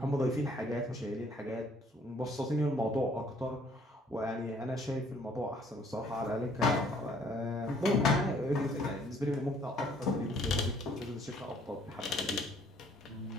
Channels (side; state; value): both; normal; correlation 0.61